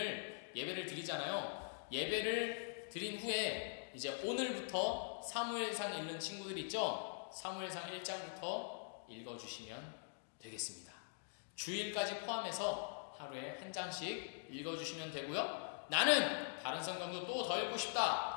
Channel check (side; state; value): right; silent; digital silence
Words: 예배를 드리잖아요. 예배를 드린 후에 이제 오늘부터 사무엘상 읽는 친구들 있죠? 사무엘상 1장부터 읽어주시면 되겠습니다. 주일까지 포함해서 하루에 한 장씩 읽어주시면 되고요. 나는 다른 성경도 또 더 읽고